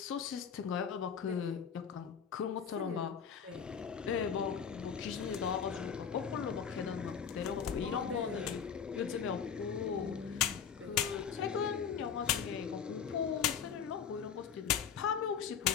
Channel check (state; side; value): quieter; right; 7.4 dB